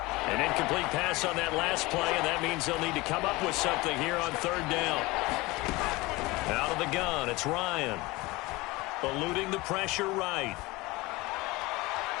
An incomplete pass on that last play, and that means they'll need to come up with something here on third down. Out of the gun, it's Ryan. Eluding the pressure right.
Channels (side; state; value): right; quieter; 21.9 dB